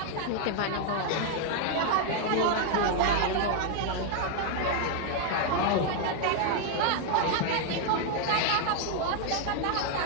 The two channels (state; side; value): different; both; correlation 0.00